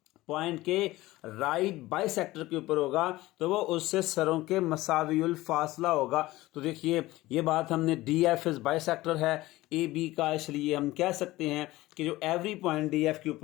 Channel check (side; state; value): right; quieter; 18.1 dB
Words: पॉइंट के राइट बाइसेक्टर के ऊपर होगा तो वो उससे सरों के मसावियुल फासला होगा। तो देखिए ये बात हमने डी एफ इज बाइसेक्टर है ए बी का, इसलिए हम कह सकते हैं कि जो एवरी पॉइंट डी एफ के